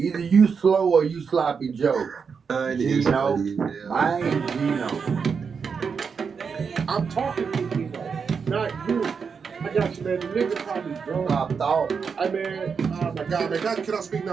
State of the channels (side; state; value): left; quieter; 5.9 dB